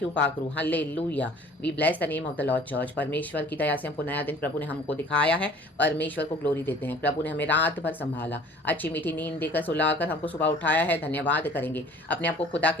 you, पाकरू. Hallelujah. We bless the name of the Lord Church. परमेश्वर की दया से हमको नया दिन प्रभु ने हमको दिखाया है. परमेश्वर को ग्लोरी देते हैं. प्रभु ने हमें रात भर संभाला, अच्छी मीठी नींद देकर सुलाकर हमको सुबह उठाया है. धन्यवाद करेंगे. अपने आप को खुदा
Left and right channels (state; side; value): normal; both; correlation 0.50